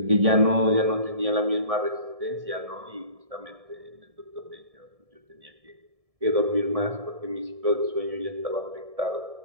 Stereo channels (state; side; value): late; left; 1.7 ms